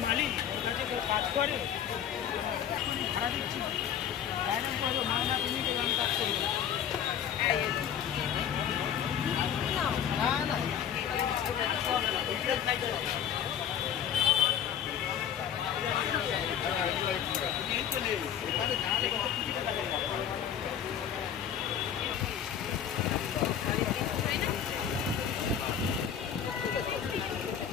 মালিক ওর কাছে কেউ কাজ করে ভাড়া দিচ্ছি বাইরে করবো মামলা তুমি আমি কাজ করবো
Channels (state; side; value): quieter; right; 9.0 dB